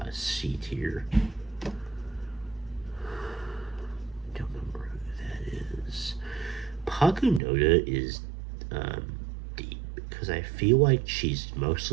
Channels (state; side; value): drops out; left; at 7.4 s